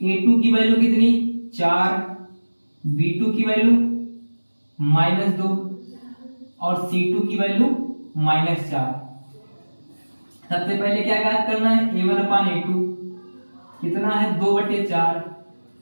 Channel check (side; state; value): both; inverted; correlation -1.00